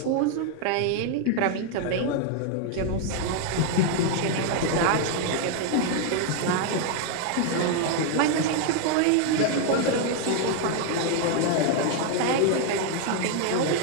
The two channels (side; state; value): both; different; correlation 0.00